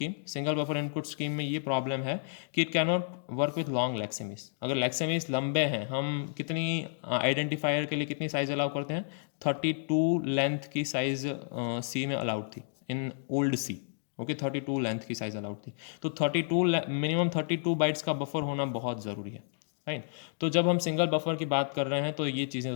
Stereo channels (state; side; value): silent; right; digital silence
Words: Single buffer input scheme में ये प्रॉब्लम है कि it can not work with long lexemes. अगर लेक्सेमीज लंबे हैं, हम कितनी आइडेंटिफायर के लिए कितनी साइज़ अलाउ करते हैं, 32 लेंथ की साइज़ सी में अलाउड थी in old C, okay, 32 length की साइज़ अलाउड थी। तो 32 मिनिमम 32 बाइट्स का बफर होना बहुत ज़रूरी है, राइट। तो जब हम सिंगल बफर की बात कर रहे हैं तो ये चीज़ें